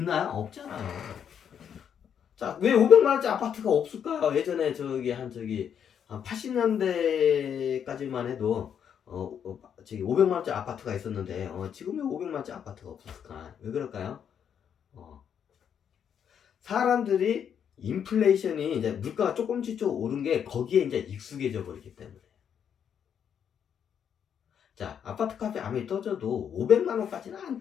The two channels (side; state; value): right; quieter; 8.3 dB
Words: 없잖아요. 자, 왜 500만 원짜리 아파트가 없을까요? 예전에 한 80년대까지만 해도 500만 원짜리 아파트가 있었는데 지금 왜 500만 원짜리 아파트가 없었을까? 왜 그럴까요? 사람들이 인플레이션이 이제 물가가 조금씩 오른 게 거기에 이제 익숙해져 버리기 때문에. 자, 아파트 값이 아무리 떨어져도 500만 원까지는 안